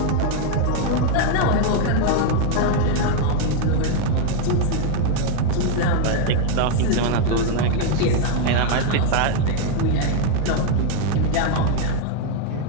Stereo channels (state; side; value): different; both; correlation 0.00